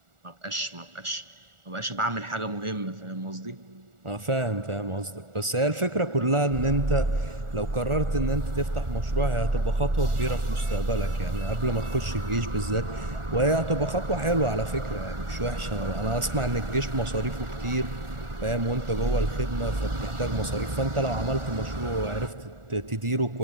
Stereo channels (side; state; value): left; late; 1.4 ms